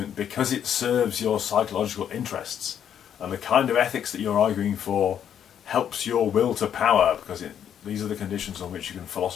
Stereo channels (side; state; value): right; quieter; 9.2 dB